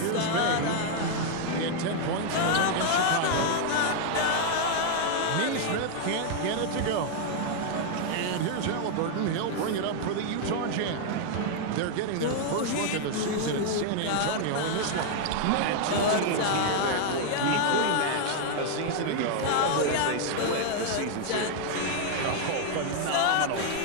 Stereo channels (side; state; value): both; different; correlation 0.00